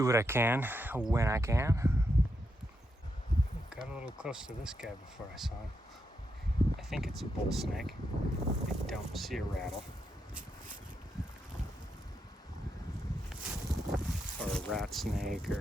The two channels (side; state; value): both; normal; correlation 0.83